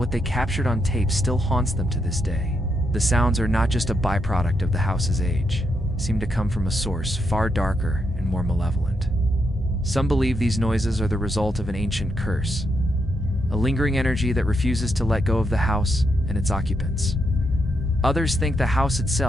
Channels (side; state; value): both; normal; correlation 0.81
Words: they captured on tape still haunts them to this day. The sounds are not just a byproduct of the house's age. Seem to come from a source far darker and more malevolent. Some believe these noises are the result of an ancient curse, a lingering energy that refuses to let go of the house and its occupants. Others think the house